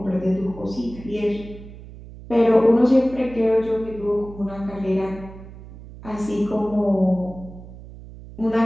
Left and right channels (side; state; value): right; noise; hum, 16 dB below the sound